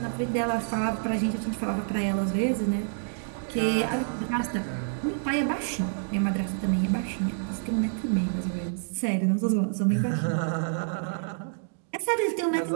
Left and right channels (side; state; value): left; silent; digital silence